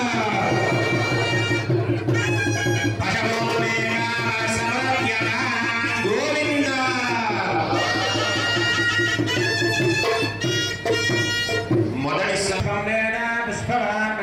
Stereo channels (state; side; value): identical; both; correlation 1.00